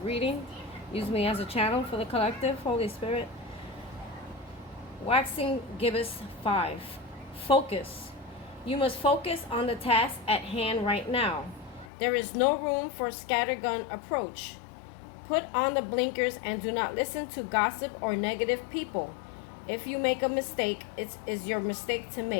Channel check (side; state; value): right; drops out; at 11.9 s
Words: Use me as a channel for the collective. Holy Spirit. Waxing gibbous 5. Focus. You must focus on the task at hand right now. There is no room for scattergun approach. Put on the blinkers and do not listen to gossip or negative people. If you make a mistake, it is your mistake to